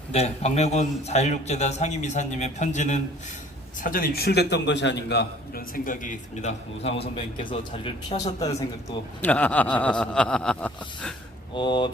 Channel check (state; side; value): normal; both; correlation 0.53